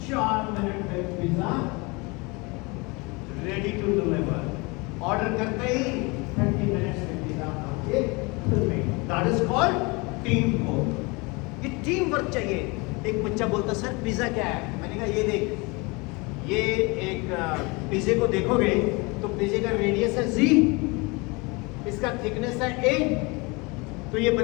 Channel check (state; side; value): quieter; right; 27.2 dB